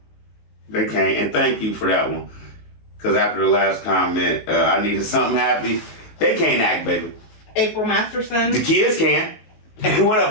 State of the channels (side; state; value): right; late; 19 ms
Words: They can't. And thank you for that one. Because after the last comment, I needed something happy. They can't act, baby. April Masterson. The kids can. What up,